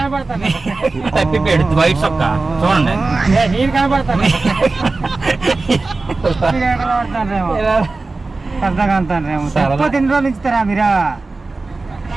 తప్పిపోయాడు వైట్ సొక్క. చూడండి. నేను కనబడతాను. పెద్దగా అంటాను. ఎన్ని రోజులు ఇస్తారా మీరు?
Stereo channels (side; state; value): left; quieter; 3.5 dB